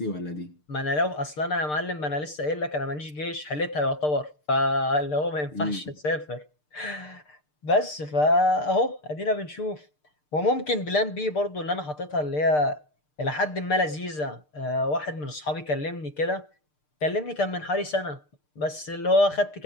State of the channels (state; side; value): late; right; 6.7 ms